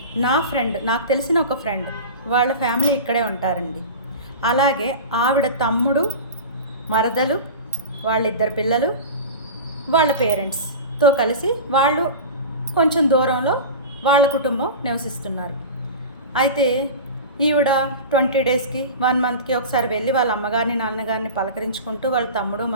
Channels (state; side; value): inverted; both; correlation -0.30